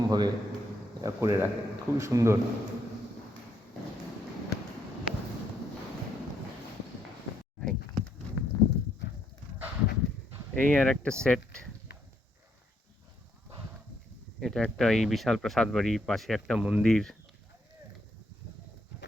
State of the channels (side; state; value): both; normal; correlation 0.74